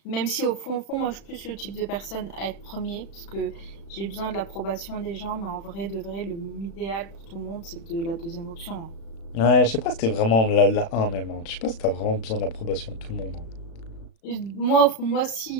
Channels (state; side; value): late; right; 36 ms